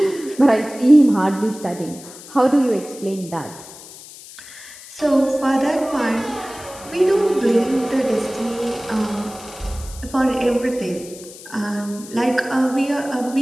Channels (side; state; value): left; noise; hiss, 17 dB below the sound